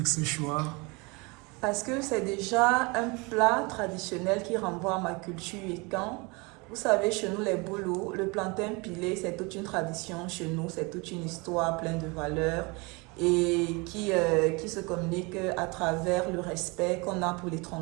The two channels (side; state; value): left; quieter; 27.7 dB